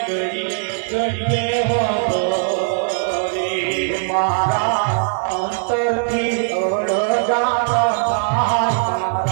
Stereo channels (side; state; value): left; silent; digital silence